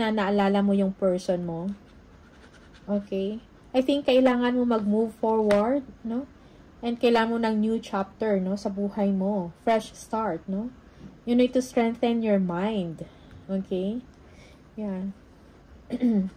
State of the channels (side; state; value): both; identical; correlation 1.00